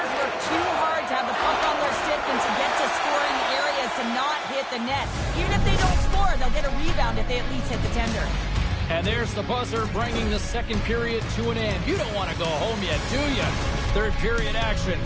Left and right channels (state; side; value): identical; both; correlation 1.00